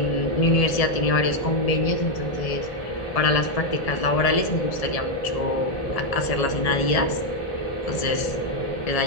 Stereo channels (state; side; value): late; right; 1.7 ms